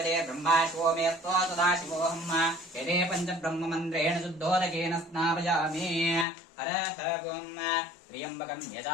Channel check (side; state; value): right; drops out; at 6.2 s